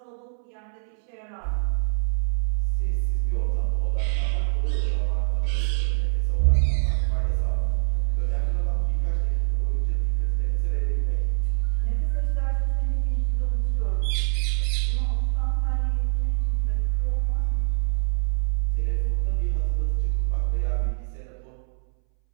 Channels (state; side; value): silent; left; 62 dB below the other